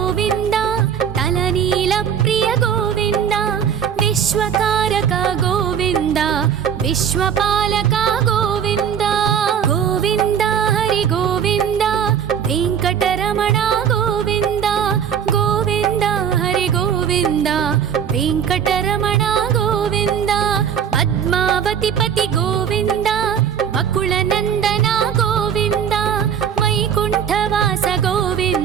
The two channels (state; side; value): quieter; left; 8.2 dB